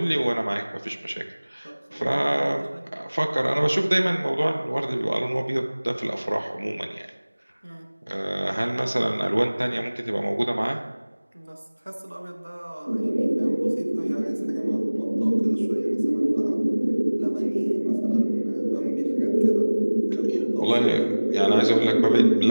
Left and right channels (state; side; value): inverted; both; correlation -1.00